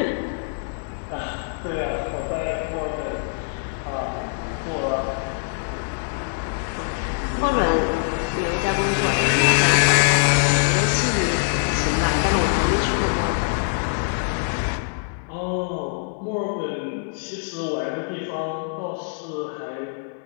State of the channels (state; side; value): silent; right; digital silence